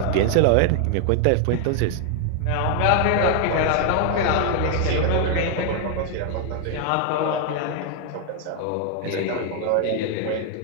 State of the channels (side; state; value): both; different; correlation 0.01